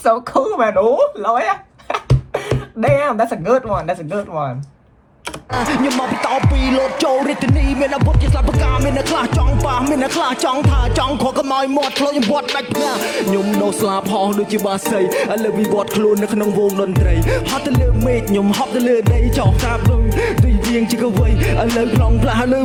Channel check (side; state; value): both; identical; correlation 1.00